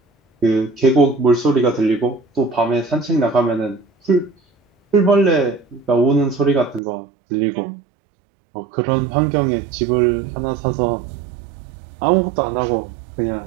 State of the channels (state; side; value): drops out; left; at 6.8 s